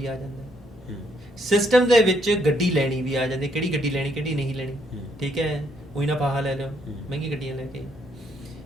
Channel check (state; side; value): normal; both; correlation 0.71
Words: ਆ ਜਾਂਦਾ, ਸਿਸਟਮ ਦੇ ਵਿੱਚ ਗੱਡੀ ਲੈਣੀ ਵੀ ਆ ਜਾਂਦੀ, ਕਿਹੜੀ ਗੱਡੀ ਲੈਣੀ, ਕਿਹੜੀ ਨਹੀਂ ਲੈਣੀ, ਠੀਕ ਹੈ, ਉਹੀ ਨਾ ਫਾਹਾ ਲੈ ਲਿਓ ਮਹਿੰਗੀ ਗੱਡੀਆਂ ਲੈ ਕੇ।